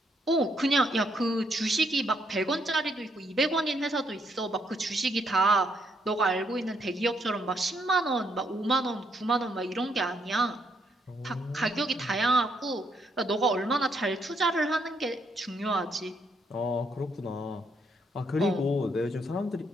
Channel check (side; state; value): both; normal; correlation 0.74